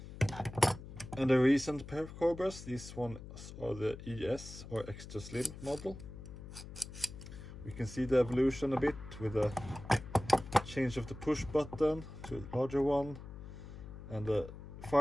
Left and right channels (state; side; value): noise; left; hum, 13 dB below the sound